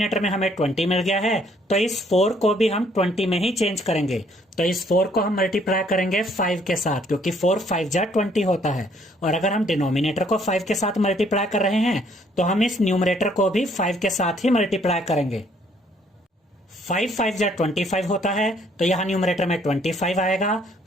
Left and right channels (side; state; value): both; normal; correlation 0.65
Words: में हमें 20 मिल गया है, तो इस 4 को भी हम 20 में ही चेंज करेंगे। तो इस 4 को हम मल्टीप्लाई करेंगे 5 के साथ, क्योंकि 4 5 जा 20 होता है। और अगर हम डिनोमिनेटर को 5 के साथ मल्टीप्लाई कर रहे हैं तो हम इस न्यूमरेटर को भी 5 के साथ ही मल्टीप्लाई करेंगे। 5 5 जा 25 होता है, तो यहाँ न्यूमरेटर में 25 आएगा।